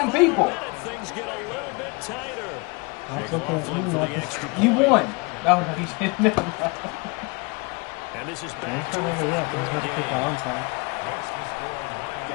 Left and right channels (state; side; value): quieter; right; 29.1 dB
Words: people. Things get a little bit tighter. You won. Oh, no, he's never. And this is He's back to trying to yet. He's about to kick on time.